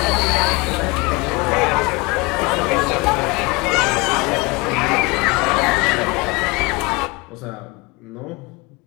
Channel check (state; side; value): quieter; right; 25.8 dB